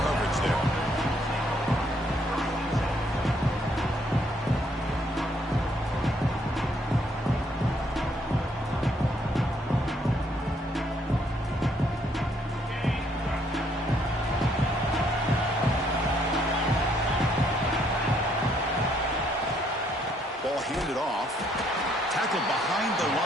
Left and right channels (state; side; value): normal; both; correlation 0.69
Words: there. Ball handed off. Tackled behind the